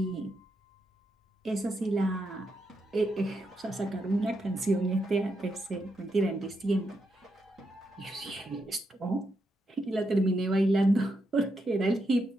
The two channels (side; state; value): both; normal; correlation 0.82